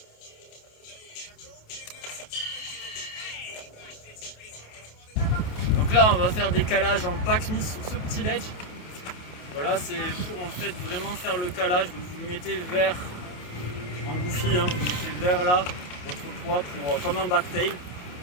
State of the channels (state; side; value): late; right; 28 ms